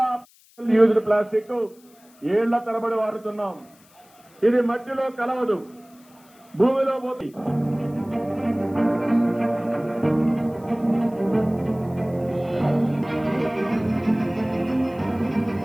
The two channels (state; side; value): noise; left; hiss, 29 dB below the sound